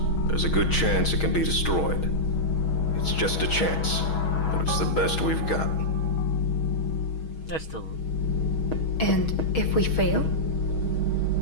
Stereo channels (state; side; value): late; right; 6.3 ms